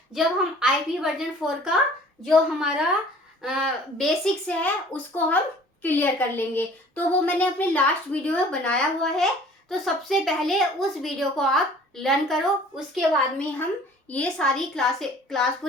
जब हम आईपी वर्जन 4 का जो हमारा बेसिक्स है उसको हम क्लियर कर लेंगे। तो वो मैंने अपने लास्ट वीडियो में बनाया हुआ है, तो सबसे पहले उस वीडियो को आप लर्न करो, उसके बाद में हम ये सारी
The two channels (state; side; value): normal; both; correlation 0.50